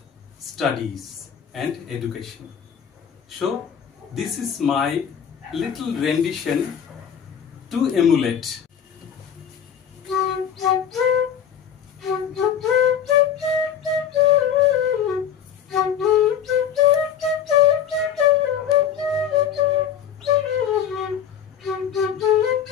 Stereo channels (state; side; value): quieter; right; 8.4 dB